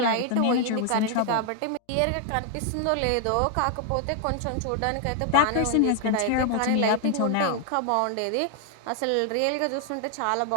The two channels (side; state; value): both; different; correlation 0.00